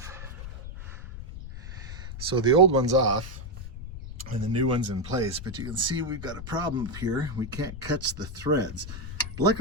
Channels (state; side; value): noise; left; rumble, 10 dB below the sound